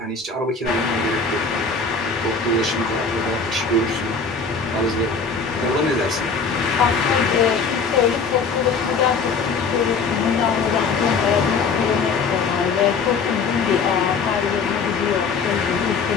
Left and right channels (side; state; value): right; quieter; 4.9 dB